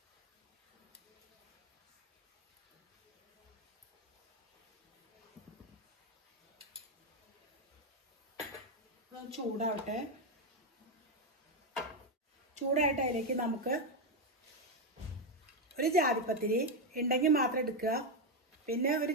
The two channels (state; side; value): normal; both; correlation 0.06